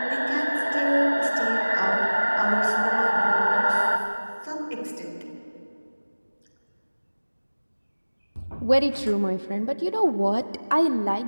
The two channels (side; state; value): both; inverted; correlation -1.00